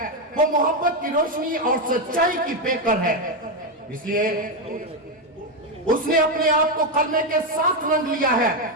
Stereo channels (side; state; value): both; normal; correlation 0.06